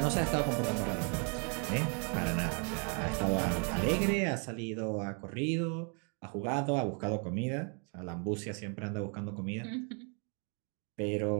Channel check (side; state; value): left; quieter; 38.0 dB